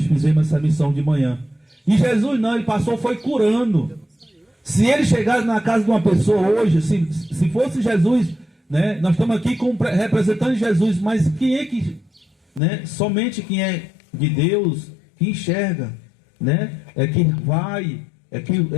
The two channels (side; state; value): right; drops out; at 12.6 s